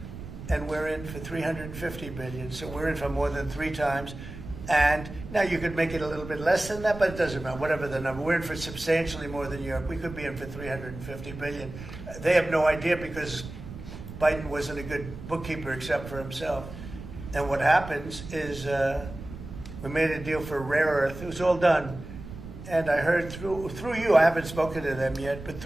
And we're in for $350 billion. So we're in for more than 3 times. And now you could make it a little bit less than that, but it doesn't matter, whatever the number. We're in for substantially more than Europe. We could be in for $350 billion. They have no idea because Biden wasn't a good bookkeeper except for himself. And what happens is we made a deal for rare earth. It was all done. And I heard through you, I haven't spoken to them yet, but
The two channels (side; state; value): right; noise; rumble, 12 dB below the sound